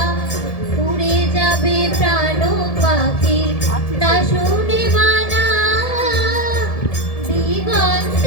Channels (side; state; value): right; late; 1.7 ms